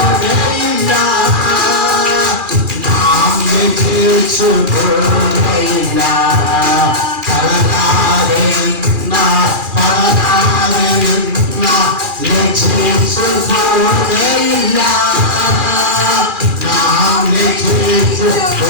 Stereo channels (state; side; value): late; left; 2.4 ms